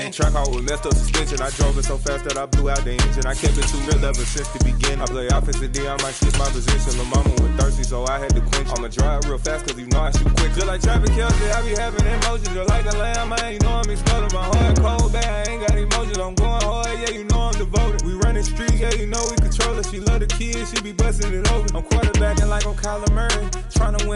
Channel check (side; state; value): both; identical; correlation 1.00